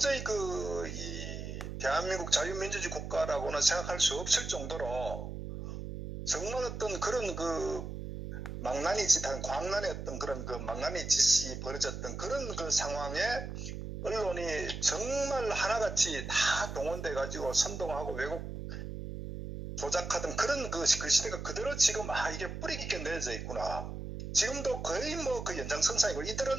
이 대한민국 자유민주주의 국가라고는 생각할 수 없을 정도로 정말 어떤 그런 그 망나니 짓한 광란의 어떤 그런 그 망나니 짓이 벌어졌던 그런 그 상황에 언론이 정말 하나같이 다 동원돼 가지고 선동하고 왜곡 조작하던 그런 그 시대가 그대로 지금 이게 뿌리 깊게 내려져 있구나. 지금도 거의 뭐 그 연장선상이고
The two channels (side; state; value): right; noise; hum, 7 dB below the sound